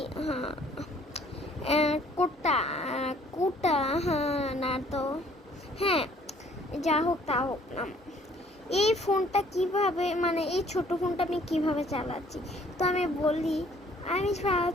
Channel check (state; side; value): normal; both; correlation 0.59